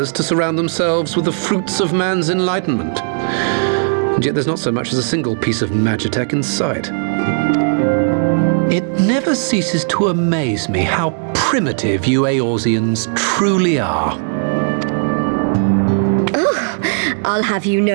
to surround themselves with the fruits of man's enlightenment. And yet there's not so much as a single piece of magitech in sight. It never ceases to amaze me how primitive you Eorzeans truly are. I'll have you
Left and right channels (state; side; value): silent; left; digital silence